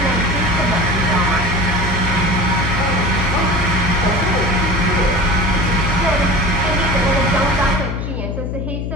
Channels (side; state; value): left; noise; hum, 4 dB below the sound